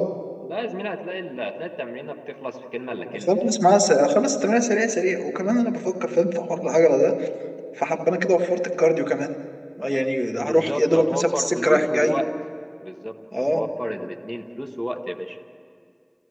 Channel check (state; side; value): identical; both; correlation 1.00